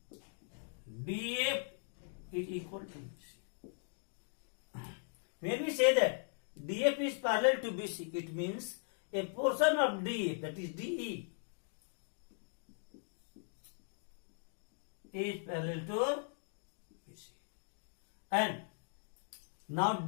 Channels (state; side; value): silent; right; digital silence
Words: DF is equal to BC. When we say that DF is parallel to BC, it means a portion of DF, that is DE, is parallel to BC. And now